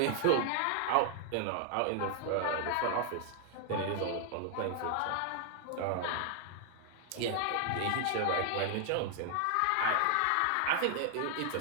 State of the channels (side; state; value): both; different; correlation 0.00